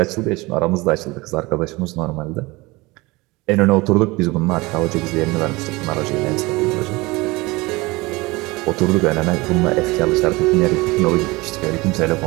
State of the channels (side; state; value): left; quieter; 22.8 dB